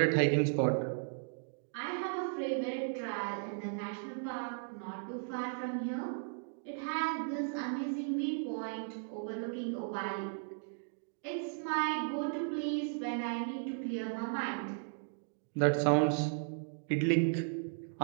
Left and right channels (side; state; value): left; silent; digital silence